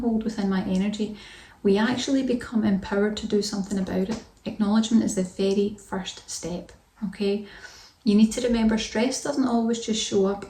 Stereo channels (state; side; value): identical; both; correlation 1.00